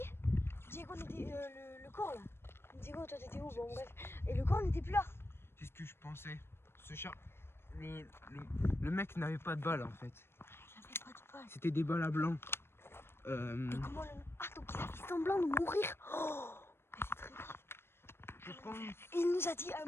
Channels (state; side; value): late; right; 0.12 ms